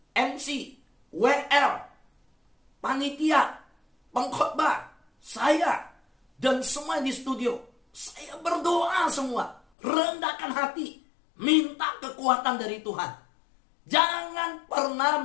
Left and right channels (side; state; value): right; drops out; at 9.6 s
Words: MC, WR, panitia, pengkhotbah, saya, dan semua di studio, saya berdoa semua, rendahkan hati, minta kekuatan dari Tuhan. Jangan pernah